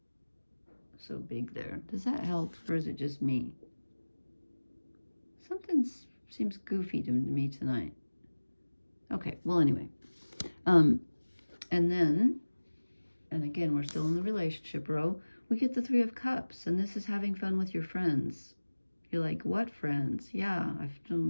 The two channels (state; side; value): inverted; both; correlation -1.00